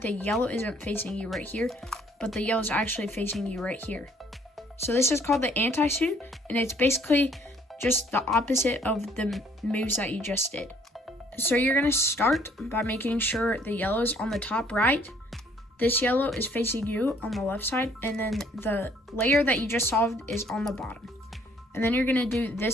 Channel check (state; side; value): normal; both; correlation 0.62